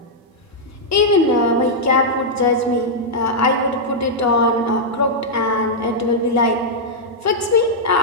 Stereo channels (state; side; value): normal; both; correlation -0.06